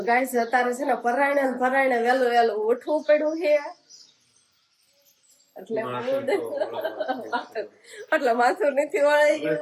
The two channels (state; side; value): identical; both; correlation 1.00